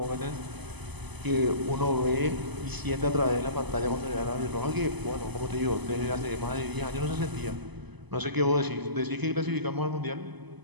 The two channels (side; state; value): left; late; 0.99 ms